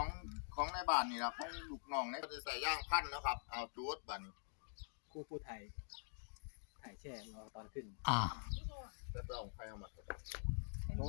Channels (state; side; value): silent; right; digital silence